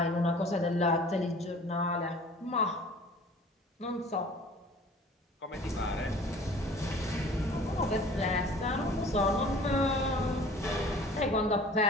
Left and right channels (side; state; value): both; normal; correlation 0.47